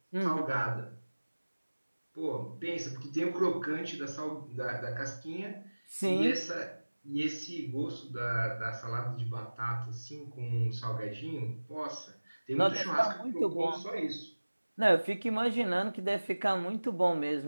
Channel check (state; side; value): inverted; both; correlation -1.00